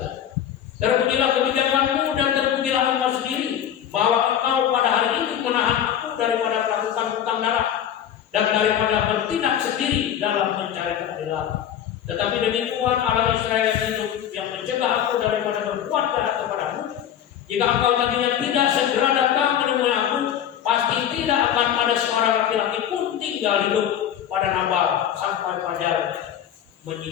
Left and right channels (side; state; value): right; quieter; 9.9 dB